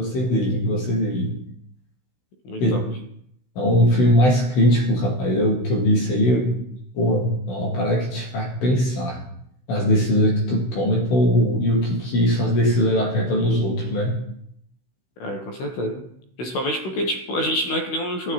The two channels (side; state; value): right; late; 16 ms